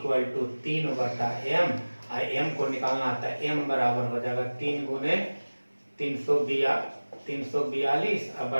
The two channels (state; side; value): inverted; both; correlation -1.00